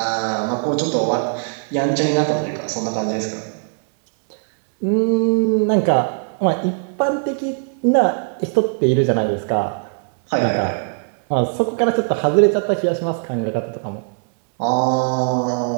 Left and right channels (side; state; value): left; silent; 66 dB below the other